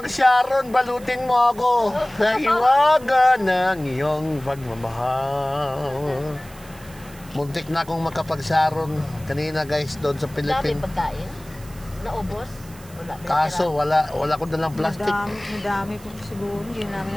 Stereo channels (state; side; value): noise; right; hiss, 22 dB below the sound